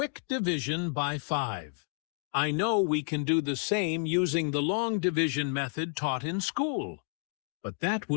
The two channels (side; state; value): right; silent; 57 dB below the other